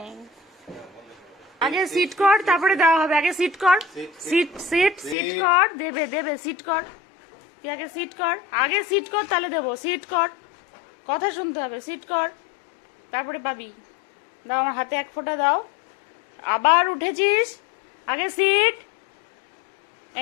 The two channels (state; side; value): drops out; right; at 5.2 s